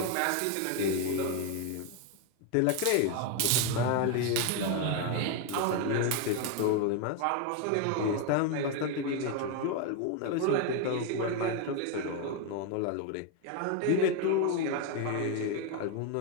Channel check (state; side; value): different; both; correlation 0.01